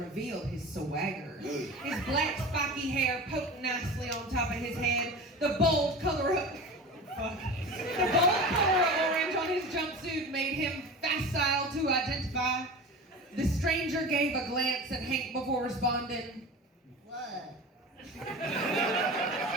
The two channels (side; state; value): both; normal; correlation 0.33